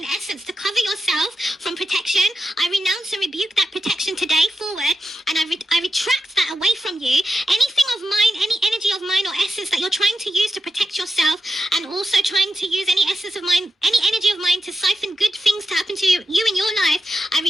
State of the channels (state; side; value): normal; both; correlation 0.90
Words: essence to cover yourself from protection, I renounce and rebuke that protection today forward, and I retract that away from you. Anything of mine, any energy of mine or essence that you're trying to use to protect yourself, and also trying to use any essence of mine, any energy of mine to siphon good things to happen to you in your life, I